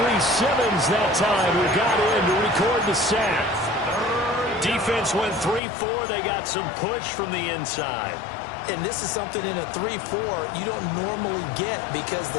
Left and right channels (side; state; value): right; drops out; at 5.6 s